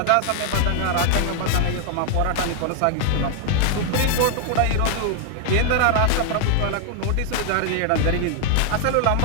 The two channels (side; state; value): both; different; correlation 0.00